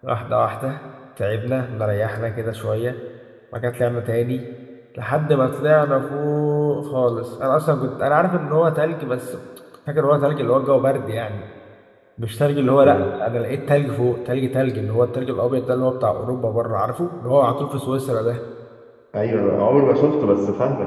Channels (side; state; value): both; identical; correlation 1.00